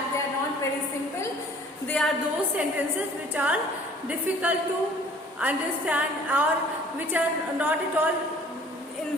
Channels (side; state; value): both; normal; correlation 0.52